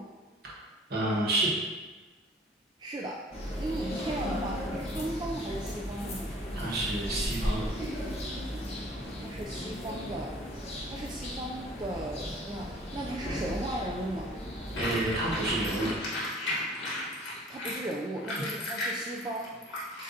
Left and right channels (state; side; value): normal; both; correlation 0.51